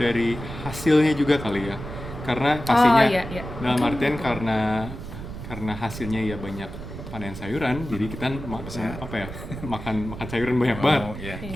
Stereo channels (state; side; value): noise; right; rumble, 10 dB below the sound